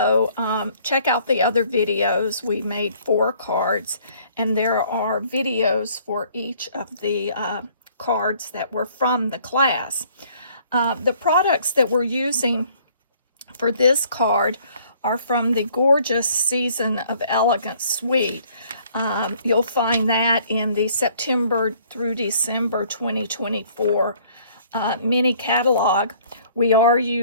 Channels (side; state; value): both; inverted; correlation -0.58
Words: check out the other videos. We made 4 cards, and there are videos for each of the cards that were from the class. The products that we're using for this card are from the gorgeous Season of Elegance suite. You'll find that in the September through December 2024 mini catalog. We are